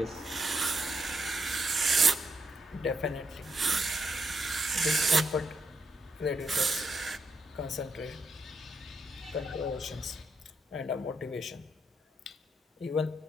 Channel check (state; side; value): normal; both; correlation 0.79